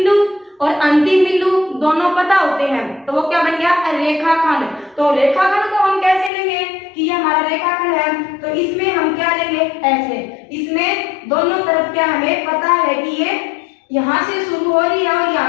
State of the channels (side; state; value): right; drops out; at 6.3 s